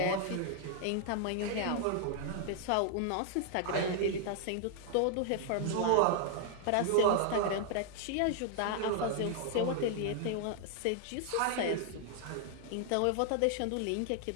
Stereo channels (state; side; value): different; both; correlation 0.00